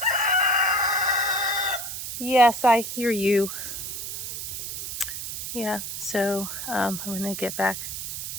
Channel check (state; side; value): noise; right; hiss, 6 dB below the sound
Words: Yes, I hear you. Yeah, so I'm gonna get back